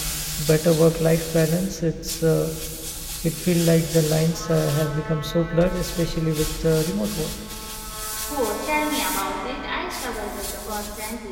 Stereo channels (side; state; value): both; identical; correlation 1.00